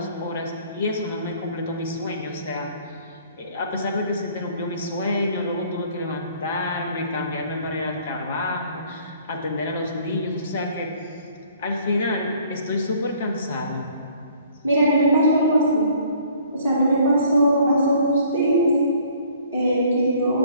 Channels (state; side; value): inverted; both; correlation -0.57